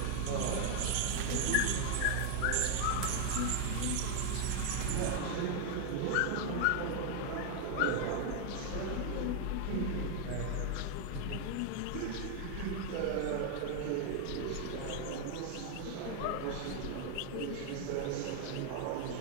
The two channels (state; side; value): different; both; correlation 0.00